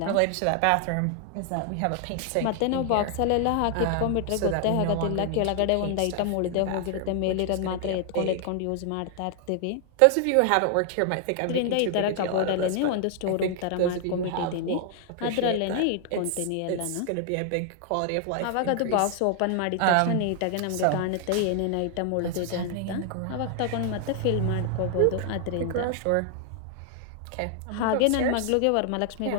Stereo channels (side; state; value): both; different; correlation 0.00